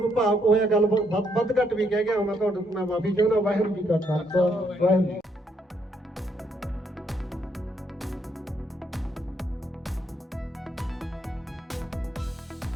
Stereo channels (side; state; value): both; normal; correlation 0.73